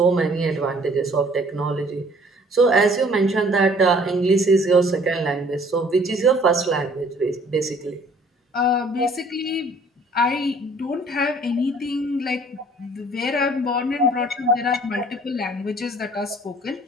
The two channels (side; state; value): both; normal; correlation 0.56